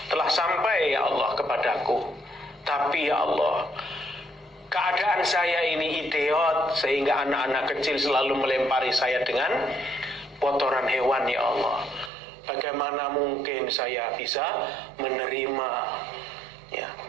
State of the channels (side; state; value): left; drops out; at 12.1 s